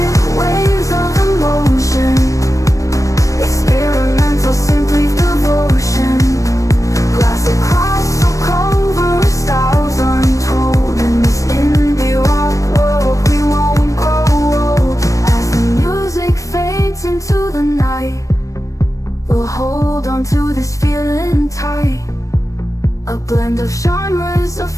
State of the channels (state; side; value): late; right; 0.16 ms